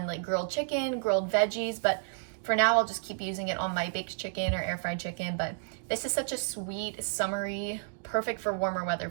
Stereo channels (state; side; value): silent; left; digital silence